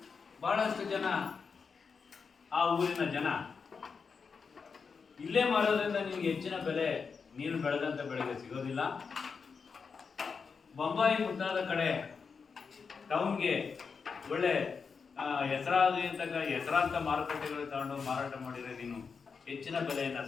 ಬಹಳಷ್ಟು ಜನ, ಆ ಊರಿನ ಜನ, ಇಲ್ಲೇ ಮಾರೋದ್ರಿಂದ ನಿಮ್ಗೆ ಹೆಚ್ಚಿನ ಬೆಲೆ ನೀನು ಬೆಳೆದಂಥ ಬೆಳೆಗೆ ಸಿಗೋದಿಲ್ಲ, ಬೊಂಬಾಯಿ ಮುಂತಾದ ಕಡೆ ಟೌನ್ಗೆ ಒಳ್ಳೆ ಹೆಸರಾಂತ ಮಾರುಕಟ್ಟೆಗಳು ತಗೊಂಡು ಮಾರಾಟ ಮಾಡಿದರೆ ನೀನು ಹೆಚ್ಚಿನ ಬೆಲೆಯನ್ನು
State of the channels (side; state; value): right; quieter; 5.5 dB